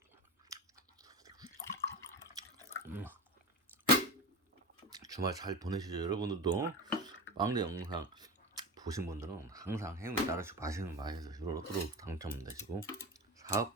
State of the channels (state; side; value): normal; both; correlation 0.26